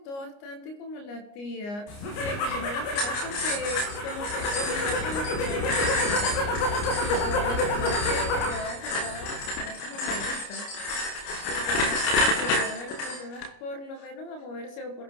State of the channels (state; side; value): late; right; 29 ms